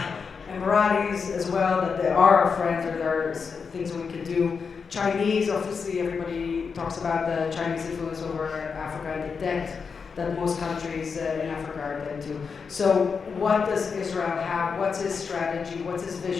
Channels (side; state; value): right; quieter; 5.6 dB